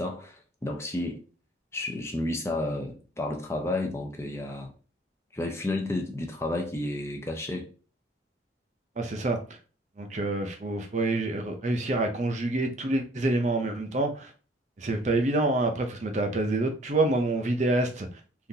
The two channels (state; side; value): normal; both; correlation 0.57